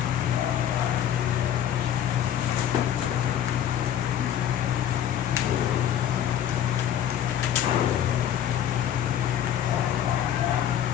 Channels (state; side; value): quieter; right; 10.2 dB